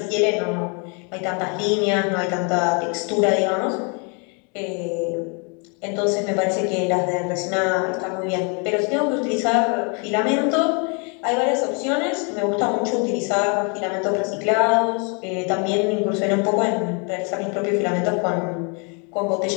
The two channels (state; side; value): quieter; right; 35.5 dB